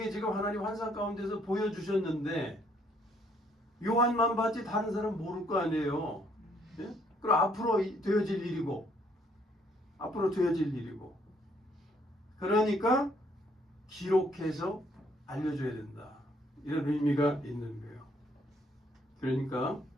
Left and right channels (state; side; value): normal; both; correlation 0.67